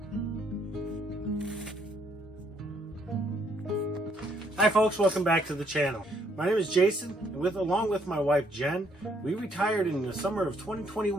Hi folks, welcome back to the channel. My name is Jason, and along with my wife Jen, we retired in the summer of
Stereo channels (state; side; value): normal; both; correlation 0.69